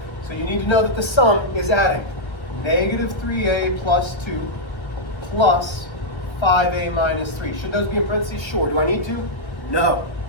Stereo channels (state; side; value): late; right; 1.3 ms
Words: So you need to know that the sum is adding negative 3a plus 2 plus 5a minus 3. Should those be in parentheses? Sure. Do I need to? No.